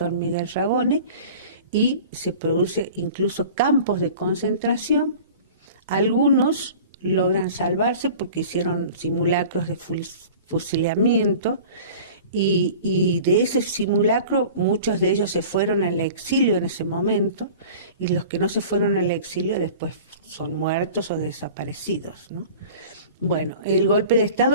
Miguel Ragone, y se produce incluso campos de concentración. Algunos logran salvarse porque hicieron simulacros de fusilamiento y de ese simulacro muchos de ellos se fueron al exilio en ese momento y los que no se fueron al exilio después son muertos o desaparecidos, ¿no? Bueno, el golpe de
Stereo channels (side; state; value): both; inverted; correlation -0.41